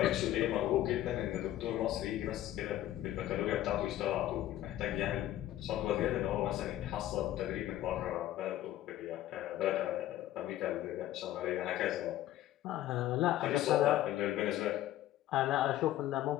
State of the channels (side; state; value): right; quieter; 13.7 dB